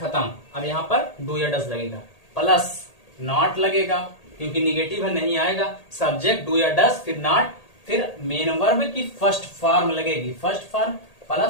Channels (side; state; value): right; late; 1.8 ms